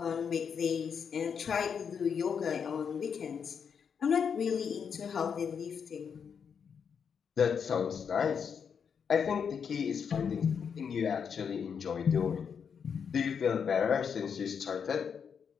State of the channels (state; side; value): quieter; right; 6.9 dB